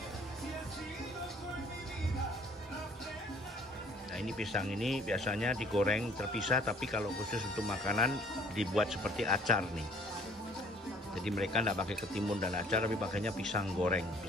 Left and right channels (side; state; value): both; normal; correlation 0.56